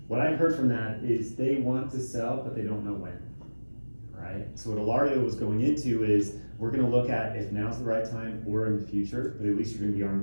What I heard from that is they want to sell, but they don't know when, right? So what Ilario was going into is, we're gonna look at if now's the right time or in the future, but at least you're gonna be armed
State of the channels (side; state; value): both; inverted; correlation -1.00